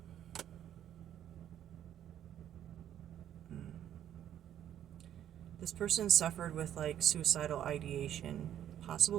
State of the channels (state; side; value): quieter; left; 10.7 dB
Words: suffered with like suicidal ideation,